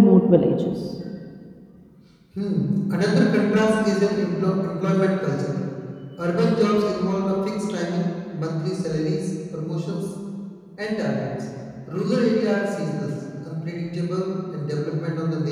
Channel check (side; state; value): both; identical; correlation 1.00